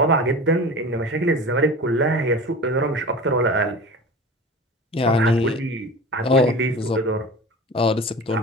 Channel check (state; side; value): normal; both; correlation 0.35